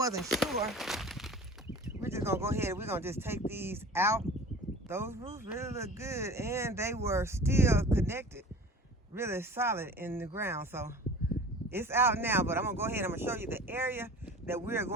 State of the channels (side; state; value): both; normal; correlation 0.40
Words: sure, we're just gonna go ahead, we're gonna just take these out. Those roots really look good, and they were still connected really solid in the ground. So it's out now, but I'm gonna go ahead, I'm gonna show you the area that we're